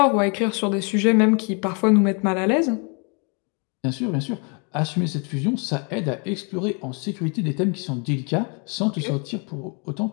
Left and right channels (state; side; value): quieter; right; 35.0 dB